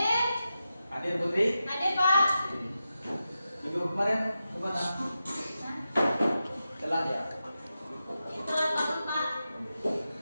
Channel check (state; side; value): inverted; both; correlation -0.91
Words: Hadir Putri? Hadir, Pak. Minggu kemarin kemana? Telat ya? Itulah Pak.